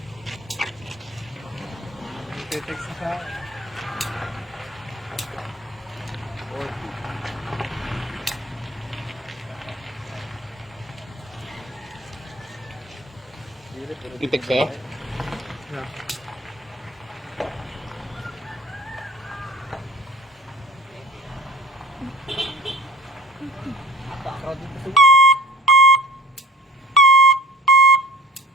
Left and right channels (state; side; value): normal; both; correlation 0.44